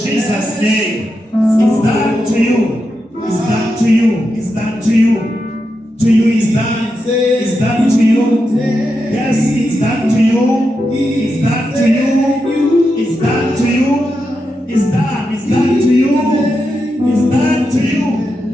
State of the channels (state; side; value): normal; both; correlation 0.87